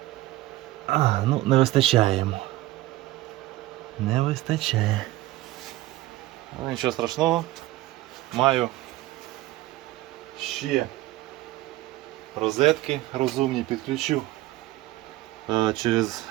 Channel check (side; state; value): left; quieter; 17.0 dB